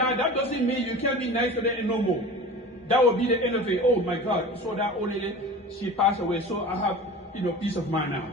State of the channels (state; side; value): normal; both; correlation 0.36